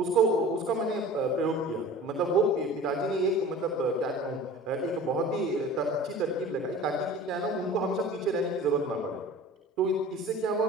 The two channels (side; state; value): both; normal; correlation 0.41